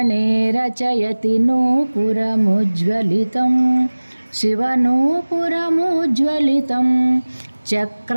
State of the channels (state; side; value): inverted; both; correlation -1.00